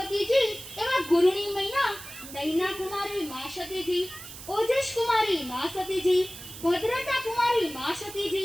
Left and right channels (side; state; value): right; noise; hiss, 13 dB below the sound